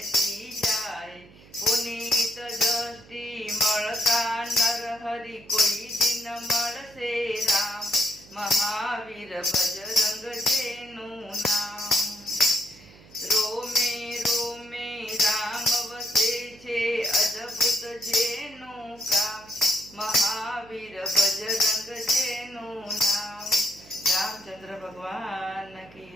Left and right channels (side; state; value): right; noise; hum, 23 dB below the sound